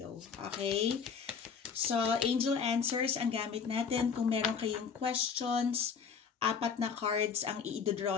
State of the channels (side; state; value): right; quieter; 6.3 dB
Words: Okay? So, angel answers ang gamit natin. Kung meron kayong questions, 4 na cards ang